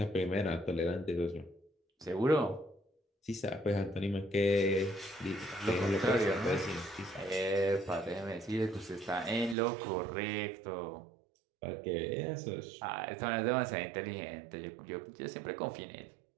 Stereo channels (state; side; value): drops out; left; at 9.6 s